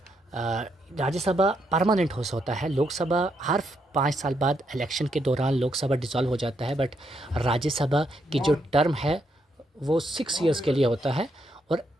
राज्यसभा परमानेंट हाउस होता है। लोकसभा हर 5 साल बाद इलेक्शन के दौरान लोकसभा डिसॉल्व हो जाता है, बट राज्यसभा की जो टर्म है वो 6 इयर्स के लिए होता है, और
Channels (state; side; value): normal; both; correlation 0.77